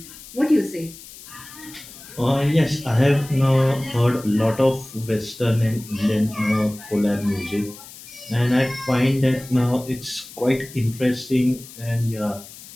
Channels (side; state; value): left; noise; hiss, 17 dB below the sound